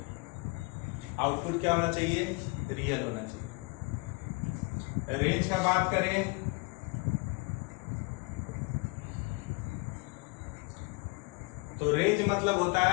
Output क्या होना चाहिए? रियल होना चाहिए। रेंज का बात करें तो रेंज मतलब होता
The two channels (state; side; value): quieter; right; 28.6 dB